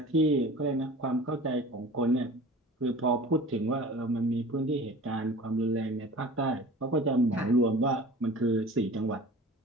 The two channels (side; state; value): both; normal; correlation 0.40